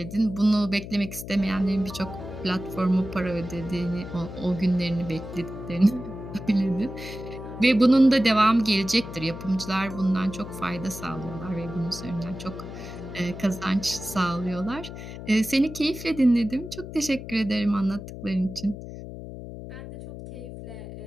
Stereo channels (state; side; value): noise; left; hum, 11 dB below the sound